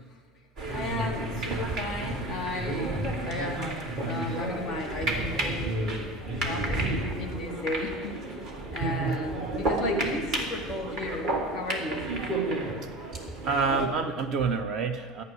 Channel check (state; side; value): normal; both; correlation 0.34